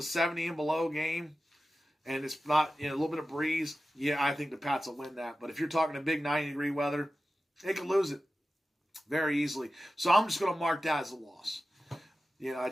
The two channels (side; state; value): both; normal; correlation 0.94